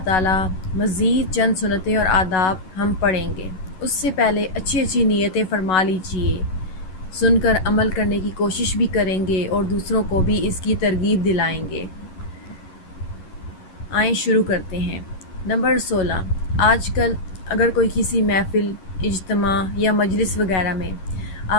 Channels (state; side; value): late; right; 11 ms